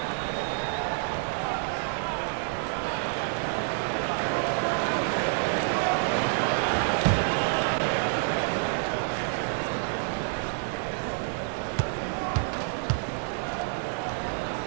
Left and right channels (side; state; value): left; silent; 59 dB below the other